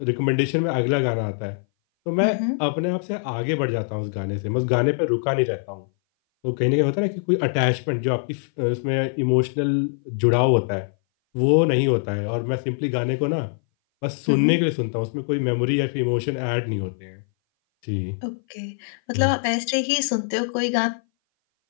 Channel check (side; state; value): right; silent; 58 dB below the other